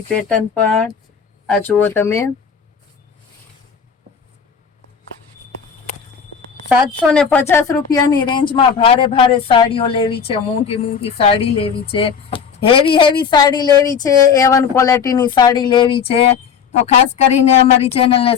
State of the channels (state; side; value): quieter; right; 6.8 dB